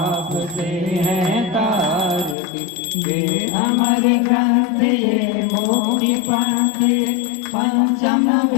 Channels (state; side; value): drops out; right; at 2.4 s